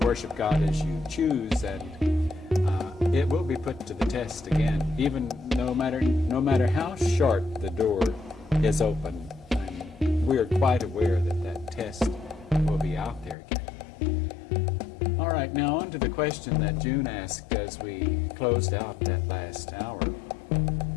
worship God as you choose, and it will be put to the test again, even no matter how short the door is open. We are quite aware that that test will be out there again. All right, now on to the question that June asked as we closed out that last hour.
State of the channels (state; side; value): drops out; right; at 13.4 s